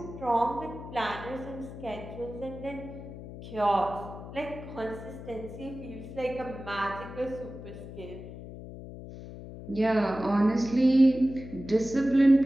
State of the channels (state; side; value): noise; left; hum, 12 dB below the sound